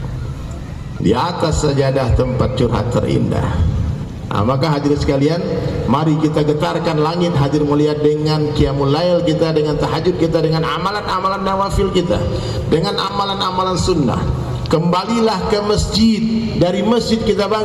Di atas sajadah tempat curhat terindah. Nah, maka hadirin sekalian, mari kita getarkan langit, hadir mulia, dengan qiyamul lail kita, dengan tahajud kita, dengan amalan-amalan nawafil kita, dengan amalan-amalan sunnah. Kembalilah ke masjid, dari masjid kita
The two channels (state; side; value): identical; both; correlation 1.00